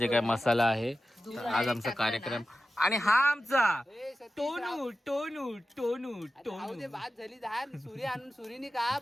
काय मसाला आहे. आज आमचा कार्यक्रम आणि हा आमचा टोनू टोनू टोनू टोनू बाद झाली धान सुरी आणून सुरीने का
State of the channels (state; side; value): normal; both; correlation 0.93